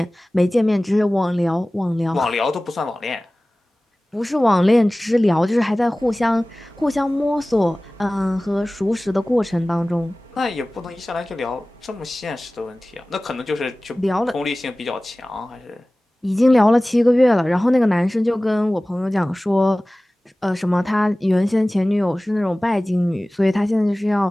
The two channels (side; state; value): both; normal; correlation 0.98